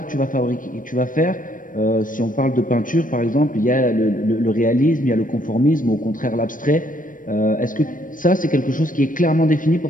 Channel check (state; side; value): late; right; 0.39 ms